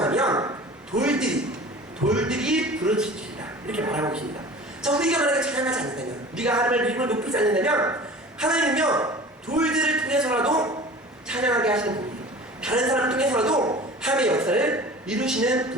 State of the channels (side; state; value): both; normal; correlation 0.40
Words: 돌들이 부르짖으리라. 이렇게 말하고 계십니다. 자, 우리가 만약에 찬양하지 않는다면, 우리가 하나님의 이름을 높이지 않는다면 하나님은요, 돌들을 통해서라도 찬양하게 하시는 분이에요. 다른 사람을 통해서라도 하나님의 역사를 이루시는